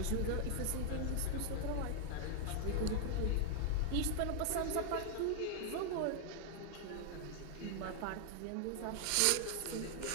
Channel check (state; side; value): different; both; correlation 0.00